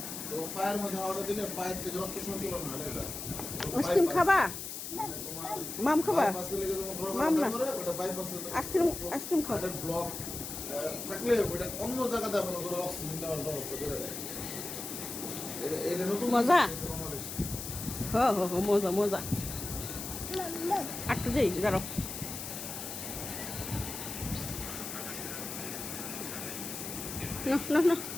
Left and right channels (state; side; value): noise; left; hiss, 7 dB below the sound